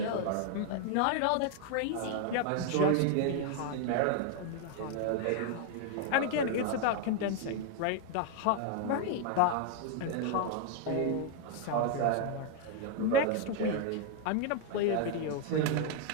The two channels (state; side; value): different; both; correlation 0.00